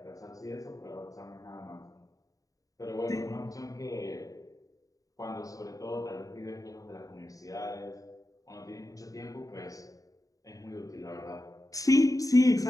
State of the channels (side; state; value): right; late; 0.17 ms